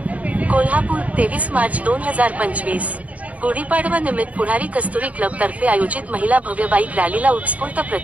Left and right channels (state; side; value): late; left; 0.069 ms